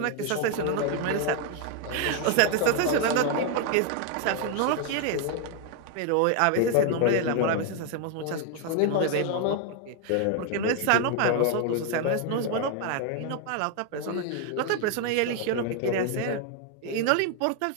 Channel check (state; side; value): different; both; correlation 0.01